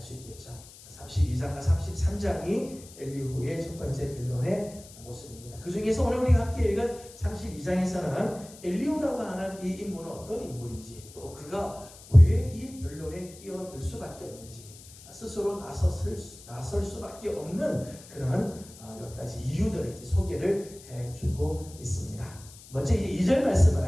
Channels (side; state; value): left; noise; hiss, 19 dB below the sound